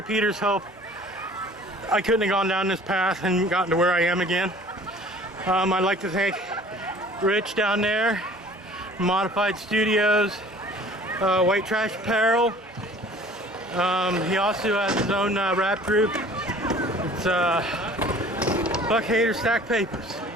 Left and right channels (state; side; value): normal; both; correlation 0.49